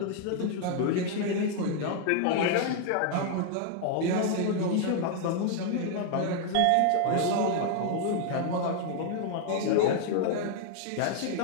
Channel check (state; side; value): different; both; correlation 0.00